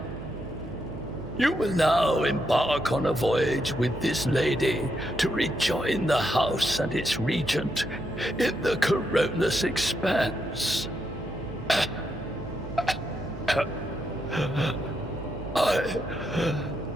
You will now embark on a voyage with this lady to rejoin the house and its regent in the Coronus Expanse.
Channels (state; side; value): noise; right; hum, 12 dB below the sound